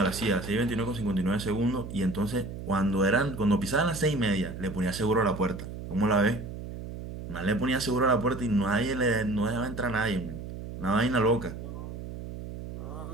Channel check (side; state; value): right; noise; hum, 9 dB below the sound